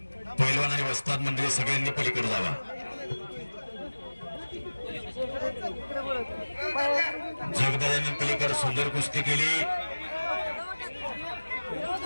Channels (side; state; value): both; inverted; correlation -1.00